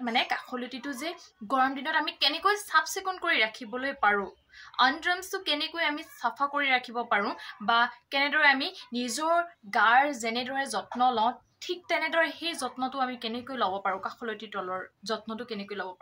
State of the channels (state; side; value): identical; both; correlation 1.00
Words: মানে কাখলতিটো যে গৰম দিনত আমি কেনেকৈ চাফ চিকুণ কৰি ৰাখিবলৈ পাৰো আণ্ডাৰআৰ্মছটো কেনেকৈ আমি চাফা কৰি ৰাখিব পাৰো বা কেনেদৰে আমি নিজৰ গাৰ যেনেদৰে যত্ন লওঁ ঠিক তেনেদৰে সেই যত্নটো আমি কেনেকৈ ল'ব পাৰো কাখলতিৰ তলৰ যত্নটো কেনেকৈ ল'ব